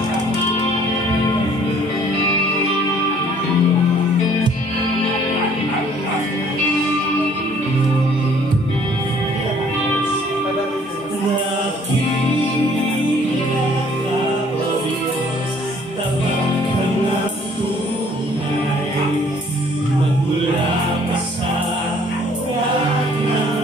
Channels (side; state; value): both; normal; correlation 0.58